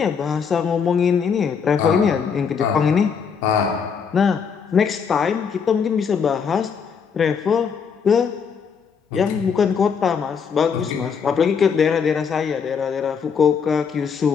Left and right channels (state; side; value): quieter; right; 6.4 dB